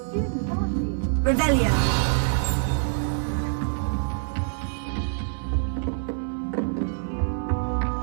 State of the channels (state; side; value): silent; left; 57 dB below the other